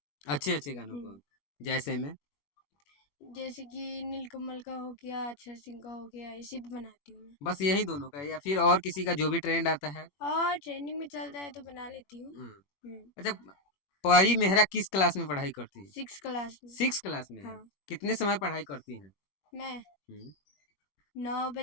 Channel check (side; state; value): right; late; 21 ms